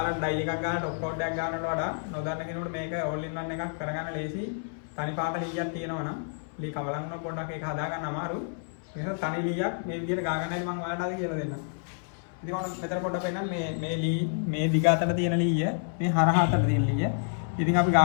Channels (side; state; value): right; silent; 59 dB below the other